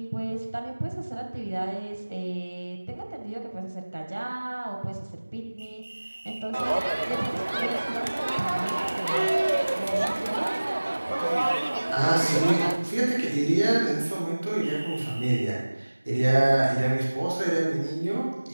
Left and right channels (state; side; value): inverted; both; correlation -1.00